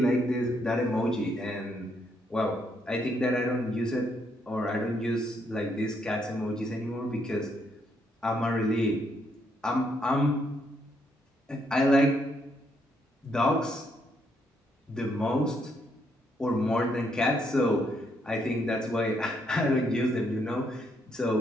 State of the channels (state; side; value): normal; both; correlation 0.74